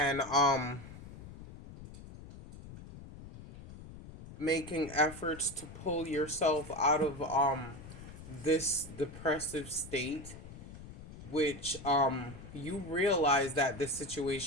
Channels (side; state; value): left; noise; rumble, 15 dB below the sound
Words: making efforts to pull yourself out of this depressive state, which you realize that this